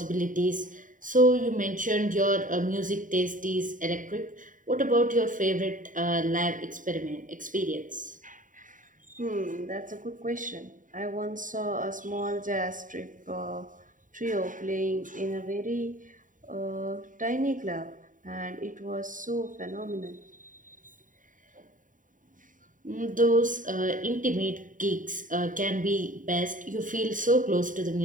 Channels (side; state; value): left; late; 0.38 ms